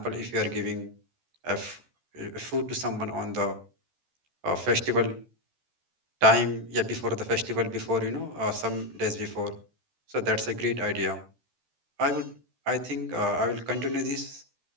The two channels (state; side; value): late; left; 13 ms